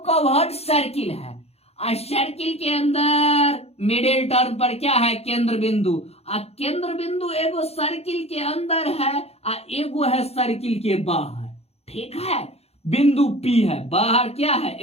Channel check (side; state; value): right; late; 0.30 ms